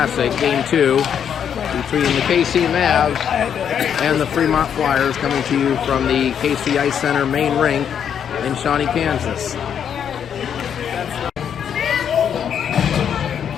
Game 2, between the KC Mavs and the Fremont Flyers, coming to you from the KC Ice Center main rink in Shawnee, Kansas.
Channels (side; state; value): right; quieter; 8.3 dB